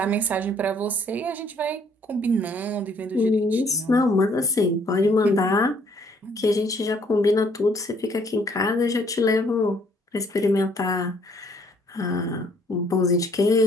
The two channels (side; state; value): both; normal; correlation 0.63